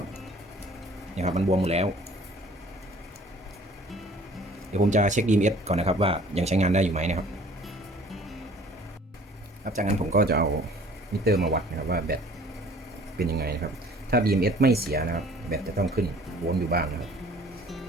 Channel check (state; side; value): normal; both; correlation 0.52